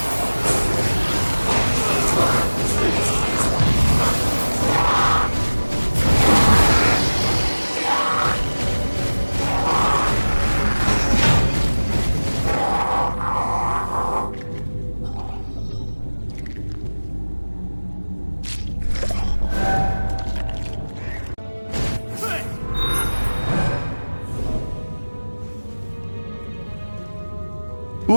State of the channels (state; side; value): inverted; both; correlation -1.00